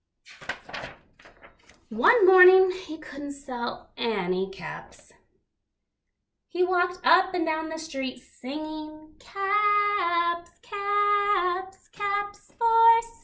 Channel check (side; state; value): both; identical; correlation 1.00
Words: One morning, he couldn't sell any caps. He walked up and down the street singing, "Caps, caps, caps for